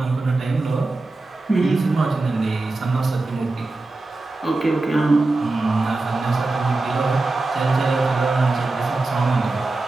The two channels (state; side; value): quieter; left; 3.2 dB